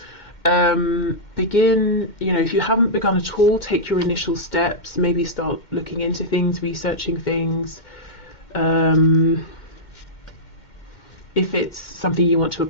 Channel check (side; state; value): right; late; 2.1 ms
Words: begin, you know, if you haven't begun at all, take your initial steps, maybe start looking into things, researching things, if it's something you want to